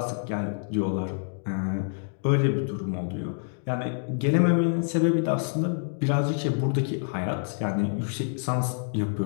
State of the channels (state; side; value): silent; right; digital silence